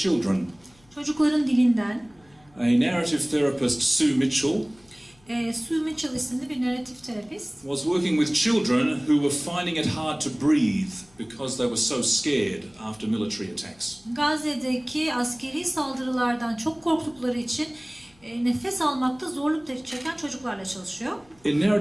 Çocukların dilinden. A narrative therapist, Sue Mitchell, Sue Mitchell isimli bir narratif terapist. was working with children who were finding it hard to breathe because they were so scared after military attacks. Gazze'deki askeri saldırılardan çok korktukları için nefes almakta zorluk çeken çocuklarla çalışıyor. In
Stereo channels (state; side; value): noise; left; hum, 30 dB below the sound